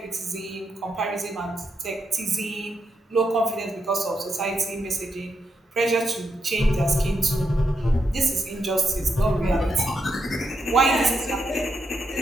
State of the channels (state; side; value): normal; both; correlation 0.83